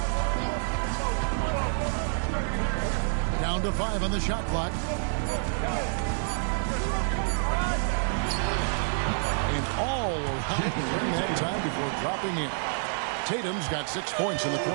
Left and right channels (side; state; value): left; silent; 59 dB below the other